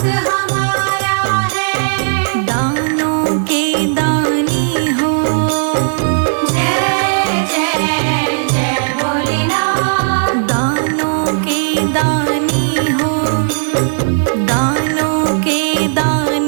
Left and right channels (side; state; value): left; silent; digital silence